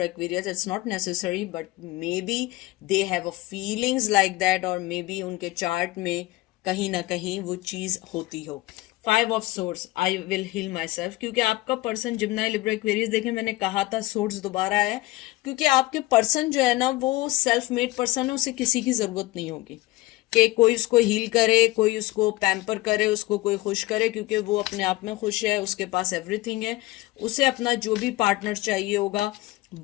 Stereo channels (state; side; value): quieter; right; 19.3 dB